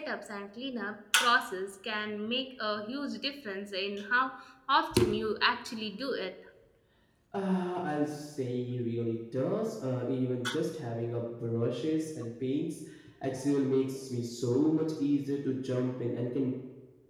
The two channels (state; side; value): identical; both; correlation 1.00